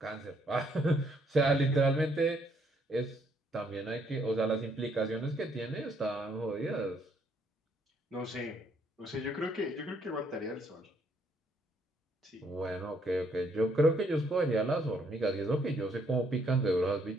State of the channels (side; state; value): both; normal; correlation 0.70